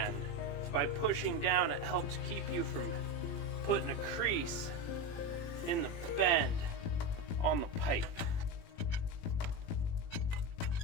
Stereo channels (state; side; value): late; right; 18 ms